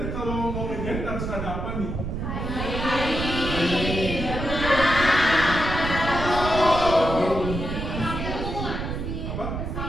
kalau mau ngejahit harus ada apa nih? Apa?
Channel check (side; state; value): right; noise; rumble, 4 dB below the sound